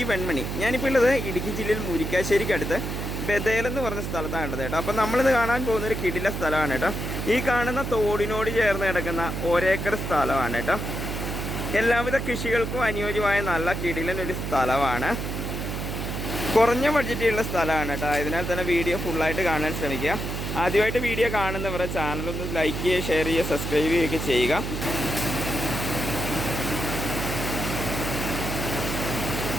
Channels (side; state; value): right; noise; hum, 4 dB below the sound